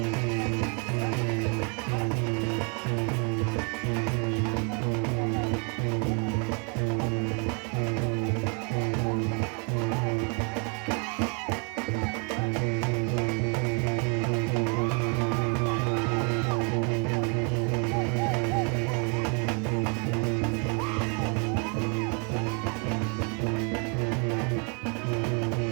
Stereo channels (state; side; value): quieter; left; 36.3 dB